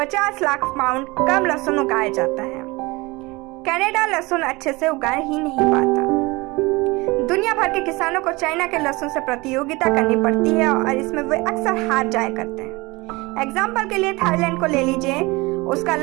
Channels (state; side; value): quieter; left; 23.5 dB